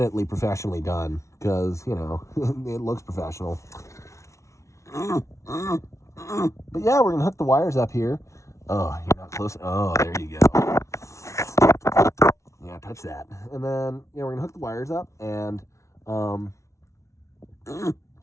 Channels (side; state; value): right; late; 0.14 ms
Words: professionally done because, you know, it looks professional. But yeah, we're going to hook the wires up here. Oh, you're not close. Oh, there you go. Yeah, touch that. And then, yeah, we're going to hook the wires up and